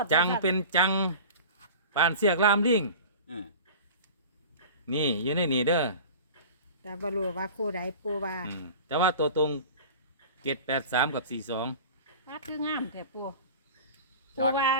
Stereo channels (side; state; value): both; inverted; correlation -0.37